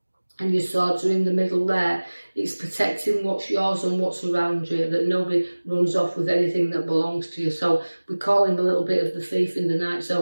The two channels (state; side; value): inverted; both; correlation -1.00